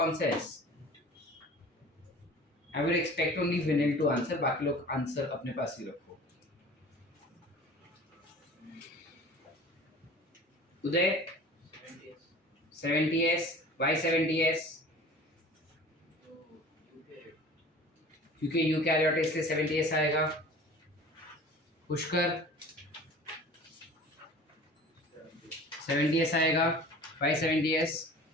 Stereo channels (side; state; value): both; normal; correlation 0.42